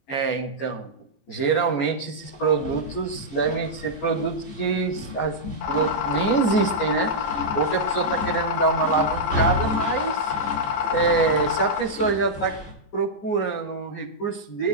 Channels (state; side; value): late; right; 14 ms